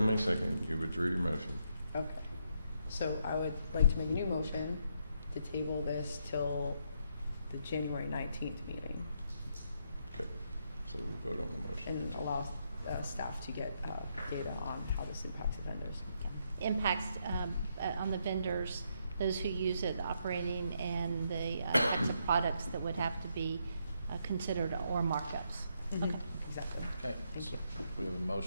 second, you withdrew your motion. Okay. So I would like to make a new motion to table this till the January 19th meeting Okay, so we vote on the motion. and allow staff to get data on how this impacts the vendors. Impacts on the vendors, those who use it, operating, and the types of products that would have to be considered or markups. Mhm. Okay. Exactly. Okay, Thank so you. we have a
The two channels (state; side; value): inverted; both; correlation -0.77